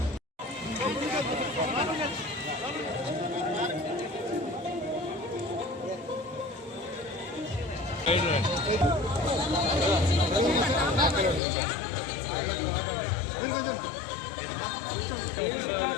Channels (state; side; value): drops out; right; at 11.4 s